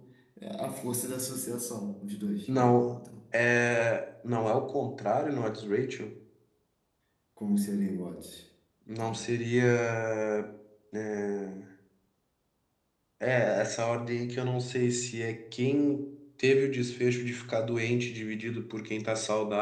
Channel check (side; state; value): both; identical; correlation 1.00